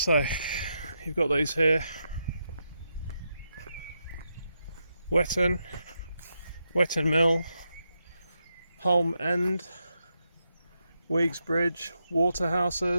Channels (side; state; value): both; inverted; correlation -0.83